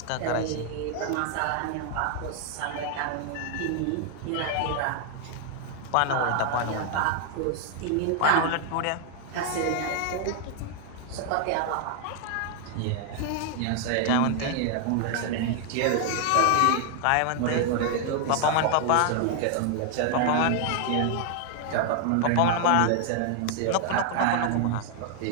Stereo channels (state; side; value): different; both; correlation 0.00